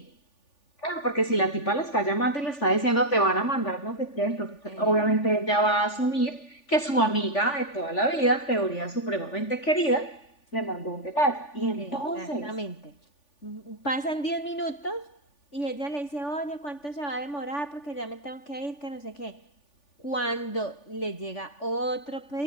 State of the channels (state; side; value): late; right; 3.5 ms